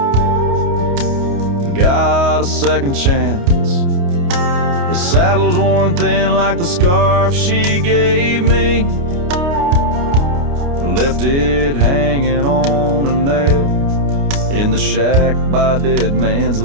Got a second chance. The saddle's worn thin like the scarf she gave me. Left it hanging on a nail in the shack by Dead Man's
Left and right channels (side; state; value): left; late; 29 ms